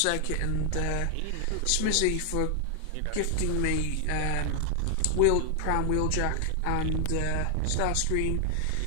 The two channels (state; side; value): different; both; correlation 0.00